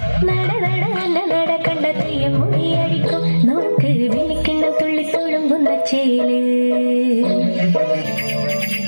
നട നട അല്ല നട കണ്ട തെയ്യം മുടിയടിക്കും നോക്ക് വിളിക്കിണ്ണം തുള്ളി തുളുമ്പുന്ന ചേല്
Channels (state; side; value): inverted; both; correlation -1.00